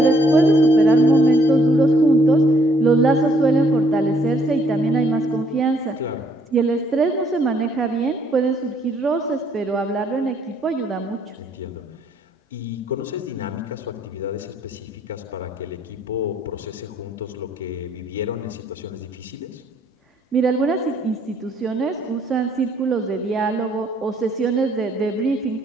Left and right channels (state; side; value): normal; both; correlation 0.67